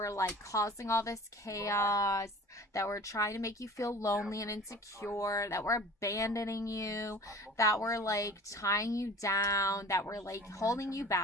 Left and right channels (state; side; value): normal; both; correlation 0.43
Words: like causing all this chaos, that were trying to make you feel lonely and insecure, that were abandoning you, that were like tying you down, that were like holding you